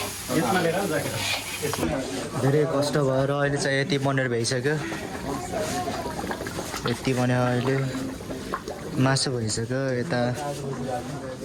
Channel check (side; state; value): both; identical; correlation 1.00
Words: धेरै कष्ट भएर अहिले चाहिँ यति बनेर भइसक्यो, यति बन्यो। अहिले मासु भइसक्यो,